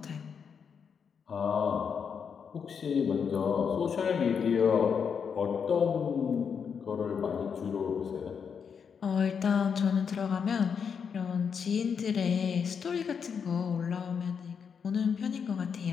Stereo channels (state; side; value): quieter; right; 6.7 dB